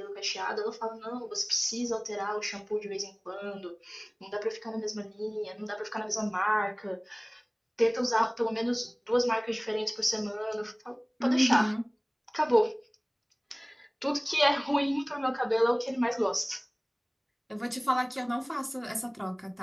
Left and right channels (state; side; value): identical; both; correlation 1.00